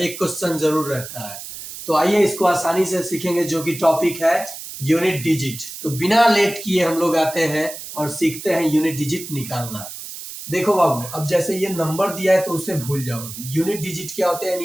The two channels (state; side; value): noise; right; hiss, 11 dB below the sound